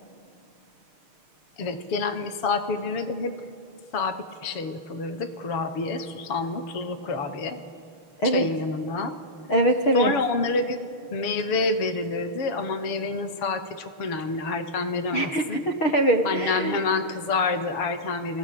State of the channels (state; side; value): late; right; 6.5 ms